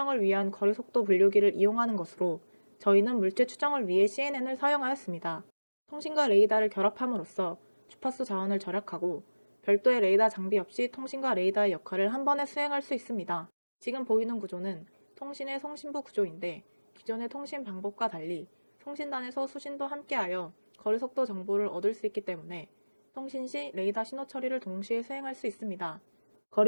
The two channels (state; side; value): inverted; both; correlation -1.00